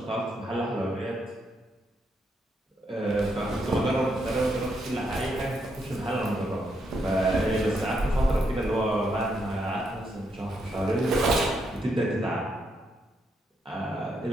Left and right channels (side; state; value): both; normal; correlation 0.78